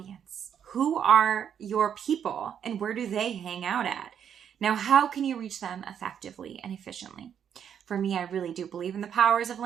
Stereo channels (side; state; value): left; quieter; 8.5 dB